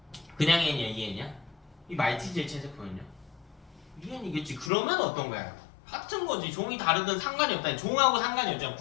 그냥 N이야, EN이야? 이 말티즈의 체세포는요? EN이겠지. 그러면 어떤 거야? 같은 거지. 종이 다르든 상관이 없다. 종하고 상관이 없잖아.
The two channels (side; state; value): right; drops out; at 4.7 s